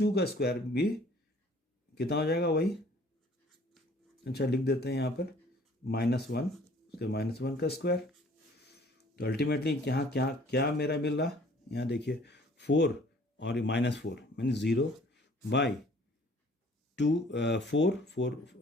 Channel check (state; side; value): normal; both; correlation 0.55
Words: का स्क्वायर भी कितना हो जाएगा वही, अच्छा लिख देते हैं यहाँ पर -1, उसके -1 का स्क्वायर। तो अल्टीमेटली यहाँ क्या मेरा मिल रहा, यहाँ देखिए 4 और -4 मीन 0 बाई 2 4 4